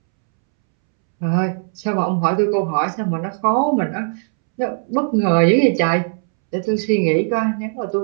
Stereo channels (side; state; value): left; silent; 67 dB below the other